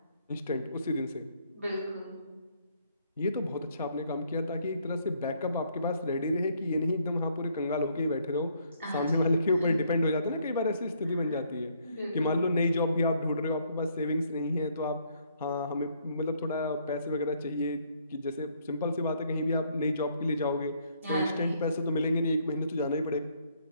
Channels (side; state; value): both; inverted; correlation -0.68